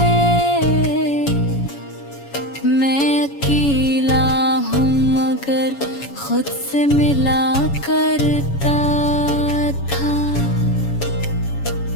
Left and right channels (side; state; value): right; late; 7.2 ms